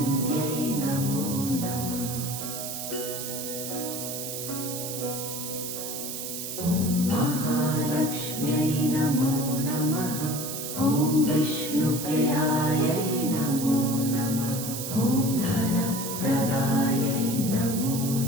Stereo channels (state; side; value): noise; right; hiss, 6 dB below the sound